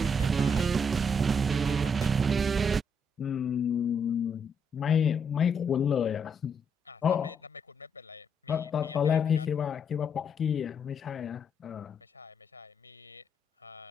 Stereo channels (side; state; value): both; normal; correlation 0.76